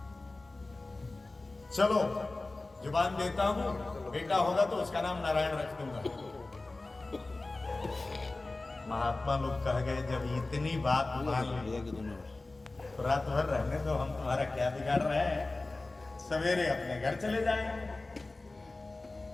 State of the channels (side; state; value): right; quieter; 3.2 dB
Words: चलो जुबान देता हूं, बेटा होगा तो उसका नाम नारायण रख दूंगा। महात्मा लोग कह गए जब इतनी बात मान ली तो रात भर रहने दो, हम तुम्हारा क्या बिगाड़ रहे हैं, सवेरे अपने घर चले जाएंगे।